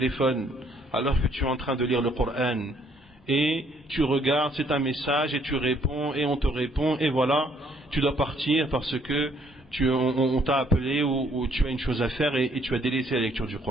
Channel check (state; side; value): normal; both; correlation 0.66